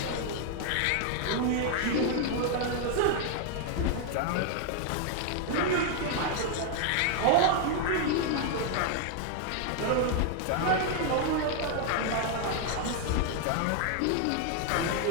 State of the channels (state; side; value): different; both; correlation 0.00